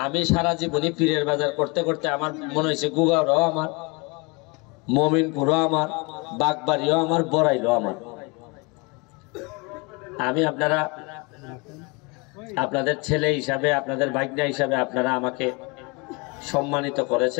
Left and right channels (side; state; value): right; quieter; 28.6 dB